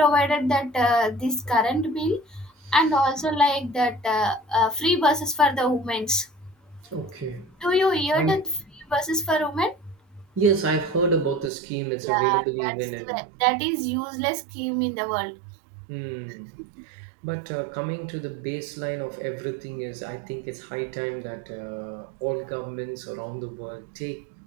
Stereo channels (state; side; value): drops out; left; at 11.5 s